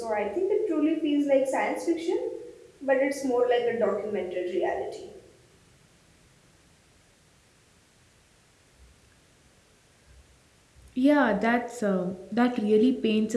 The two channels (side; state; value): both; identical; correlation 1.00